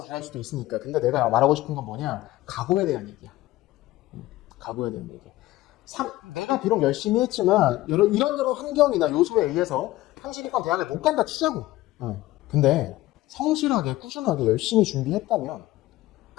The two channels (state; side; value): quieter; right; 17.0 dB